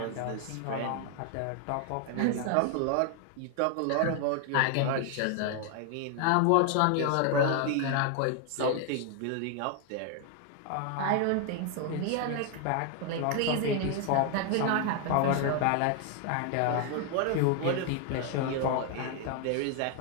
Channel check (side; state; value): both; different; correlation 0.00